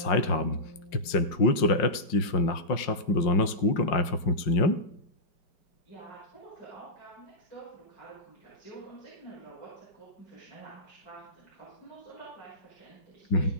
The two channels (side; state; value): right; late; 5.5 ms